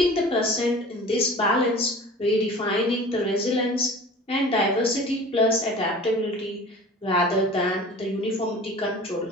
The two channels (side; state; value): both; normal; correlation 0.41